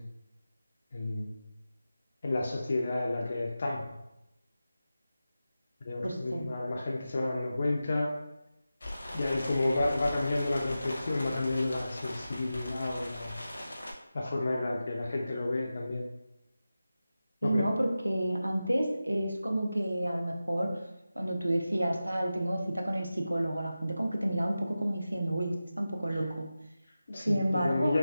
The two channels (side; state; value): both; inverted; correlation -0.93